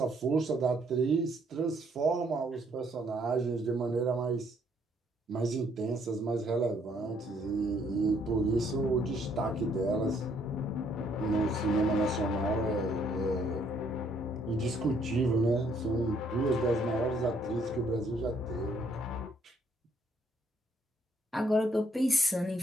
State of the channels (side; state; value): both; normal; correlation 0.68